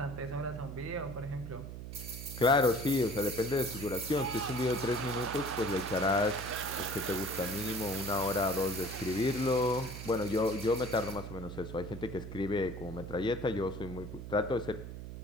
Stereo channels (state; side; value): noise; right; hum, 9 dB below the sound